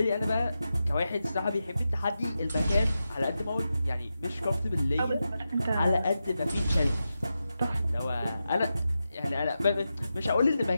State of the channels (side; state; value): both; inverted; correlation -0.90